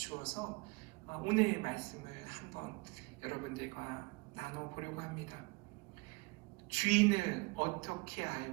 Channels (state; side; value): quieter; left; 26.4 dB